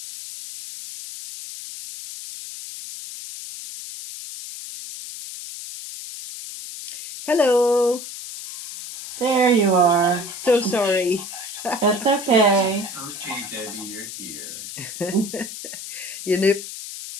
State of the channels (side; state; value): left; noise; hiss, 10 dB below the sound